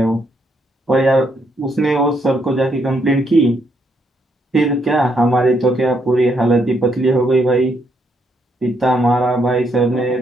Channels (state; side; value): normal; both; correlation 0.75